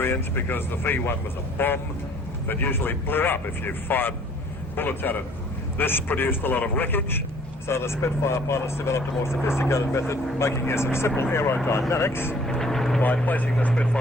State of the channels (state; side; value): normal; both; correlation 0.56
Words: because the V-1 was a bomb that usually blew up if you fired bullets at it. This produced a lot of wreckage, so the Spitfire pilots developed a more sophisticated method, making use of simple aerodynamics by placing the